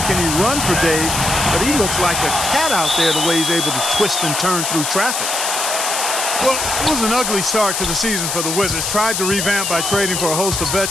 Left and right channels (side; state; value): left; noise; hiss, 2 dB below the sound